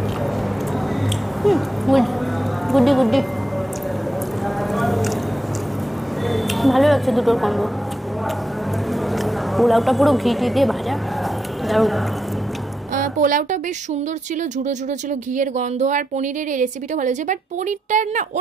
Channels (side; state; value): both; normal; correlation 0.84